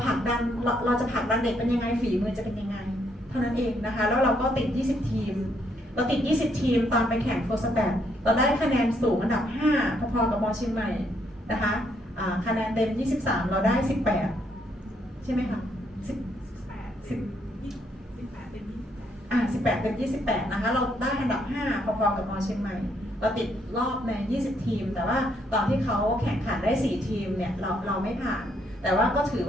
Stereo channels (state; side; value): normal; both; correlation 0.72